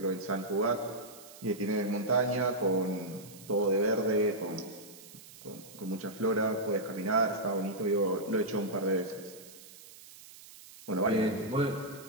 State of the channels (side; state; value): right; noise; hiss, 19 dB below the sound